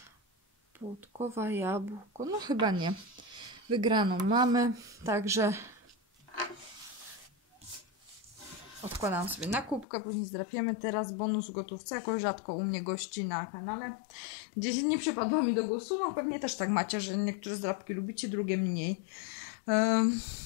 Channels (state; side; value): drops out; right; at 9.9 s